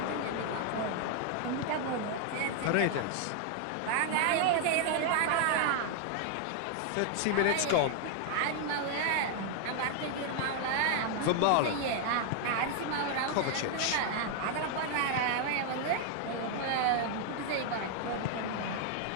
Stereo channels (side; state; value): both; different; correlation 0.00